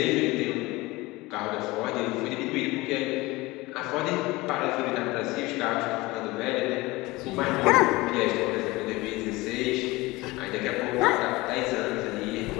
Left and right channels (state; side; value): quieter; right; 21.2 dB